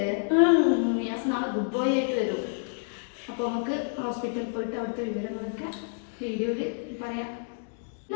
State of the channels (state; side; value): silent; right; digital silence